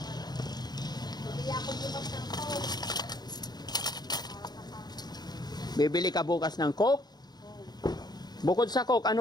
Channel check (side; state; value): right; late; 0.20 ms